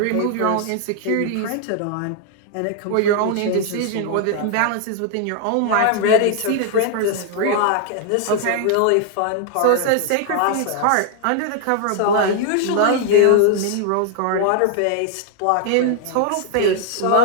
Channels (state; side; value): different; both; correlation 0.00